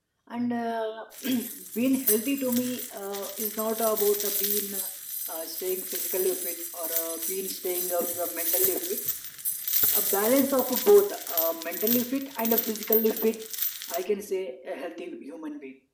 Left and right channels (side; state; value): both; identical; correlation 1.00